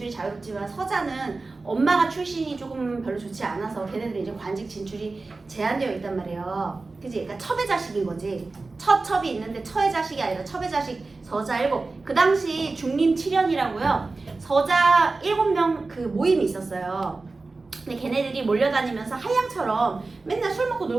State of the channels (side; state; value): left; quieter; 3.6 dB